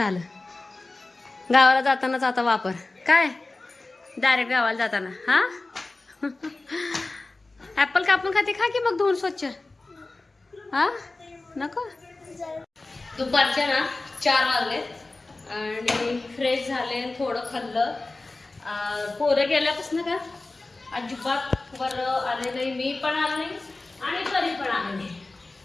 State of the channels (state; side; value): quieter; right; 3.2 dB